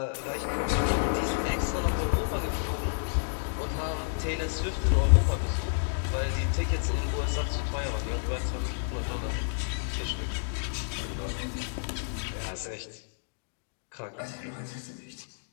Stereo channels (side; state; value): right; silent; digital silence